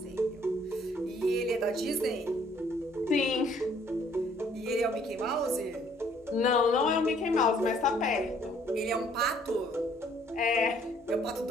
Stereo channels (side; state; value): both; normal; correlation 0.62